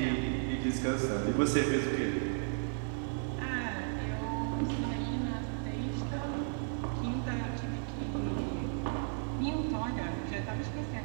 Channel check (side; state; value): left; silent; 55 dB below the other